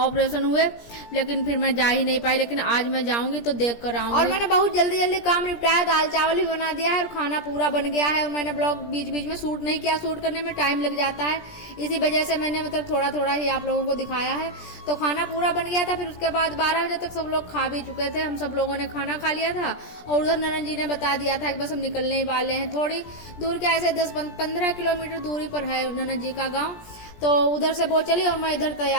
हुए, लेकिन फिर मैं जा ही नहीं पाई। लेकिन आज मैं जाऊंगी तो देख कर आऊंगी। और मैंने बहुत जल्दी जल्दी काम निपटाया, दाल चावल भी बना दिया है और खाना पूरा बन गया है। और मैंने ब्लॉग बीच बीच में शूट नहीं किया, शूट करने में टाइम लग जाता है, इसी वजह से मैंने मतलब थोड़ा थोड़ा ही आप लोगों को दिखाया है। तो खाना पूरा बन गया था। फिर उसके बाद 12 बजे तक सब लोग खा भी चुके थे, हम सब लोगों ने खाना खा लिया था। और उधर ननद जी ने बता दिया था कि बस हम निकलने ही वाले हैं, थोड़ी दूर के ऐसे 10-15 किलोमीटर दूरी पर है ननद जी का गाँव। तो उधर से वो चली और मैं इधर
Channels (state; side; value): late; right; 17 ms